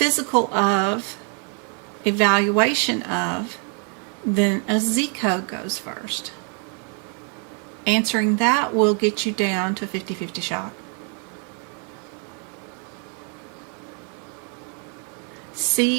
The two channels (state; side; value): quieter; left; 39.5 dB